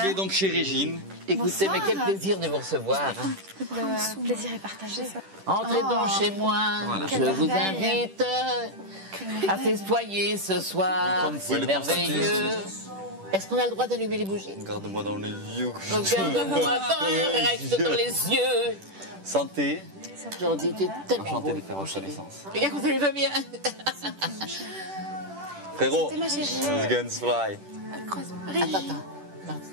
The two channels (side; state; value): left; late; 10 ms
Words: donc chez Régine. Écoutez, mais quel plaisir de vous recevoir. Le plaisir est partagé. Entrez donc chez moi. Voilà. Je vous invite à festoyer ce soir. C'est merveilleux. Est-ce qu'on a le droit d'allumer les bougies? Regarde-moi dans les yeux. Regarde-moi reste dans les yeux. Santé. Jordi, t'es tellement Enchanté beau. de faire votre connaissance. Regarde, vous allez pas bien. Frérot, C'était ma chérie. guns fly. Attends.